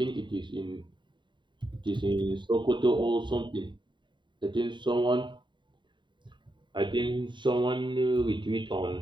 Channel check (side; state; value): left; late; 0.23 ms